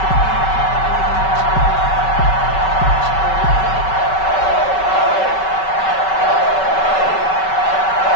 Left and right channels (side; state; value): right; late; 5.3 ms